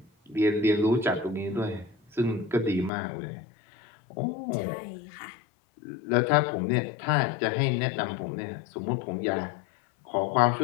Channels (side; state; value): right; drops out; at 2.9 s